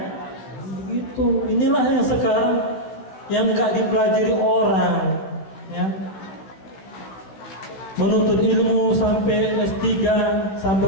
Itu inilah yang sekarang yang nggak dipelajari orang ya, menuntut ilmu sampai S3 sampai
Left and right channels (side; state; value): right; late; 16 ms